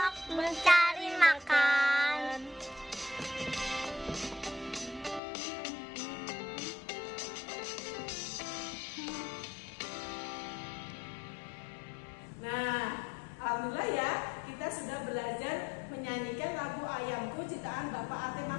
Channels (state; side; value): drops out; right; at 5.2 s